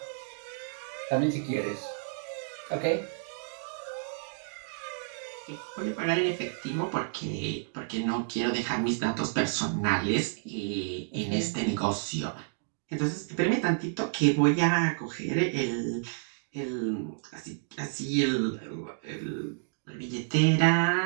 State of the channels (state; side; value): silent; left; digital silence